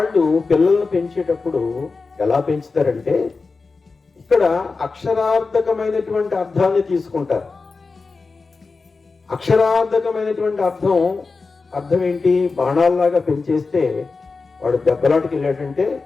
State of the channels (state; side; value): quieter; right; 4.2 dB